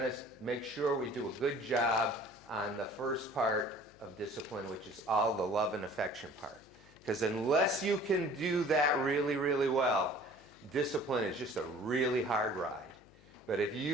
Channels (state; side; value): noise; left; hum, 25 dB below the sound